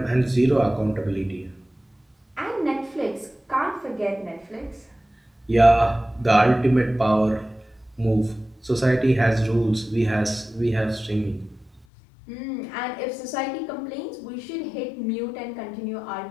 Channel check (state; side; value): drops out; right; at 11.9 s